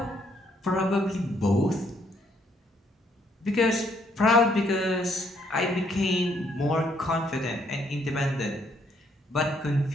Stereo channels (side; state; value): both; normal; correlation 0.70